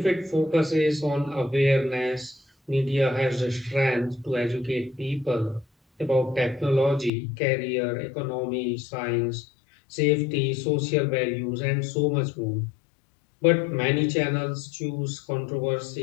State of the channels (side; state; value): right; drops out; at 7.1 s